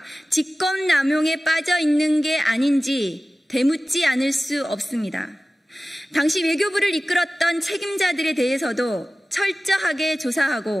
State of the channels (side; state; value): both; normal; correlation 0.96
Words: 직권남용에 빠져 있는 게 아닌지 되묻지 않을 수 없습니다. 당시 외교부를 이끌었던 책임자들에 대해서도 철저하게